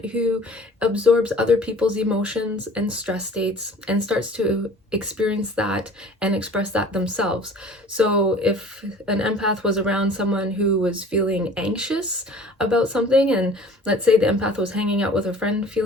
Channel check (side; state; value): both; normal; correlation 0.47